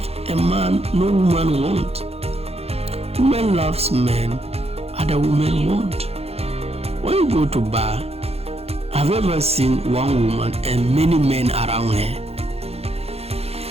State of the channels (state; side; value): late; left; 0.29 ms